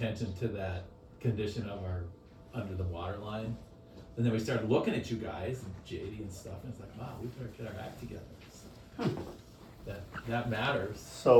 to that condition of our under the water line. And then we started looking at you guys and JD and stuff, and it's like, wow, we better get our act together. So that matters.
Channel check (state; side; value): identical; both; correlation 1.00